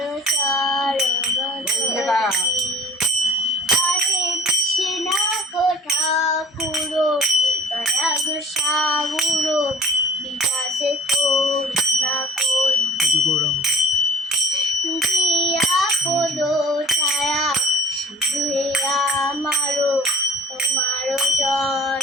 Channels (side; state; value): both; normal; correlation 0.45